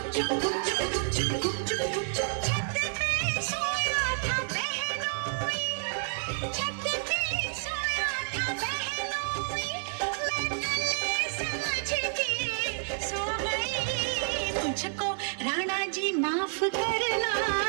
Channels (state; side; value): silent; left; digital silence